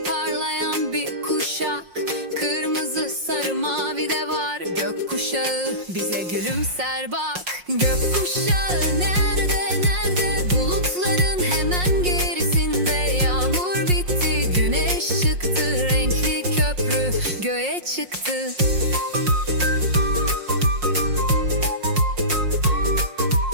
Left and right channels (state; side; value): late; left; 5.6 ms